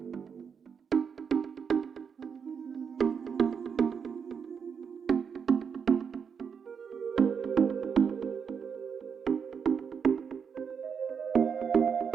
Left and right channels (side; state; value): left; quieter; 6.6 dB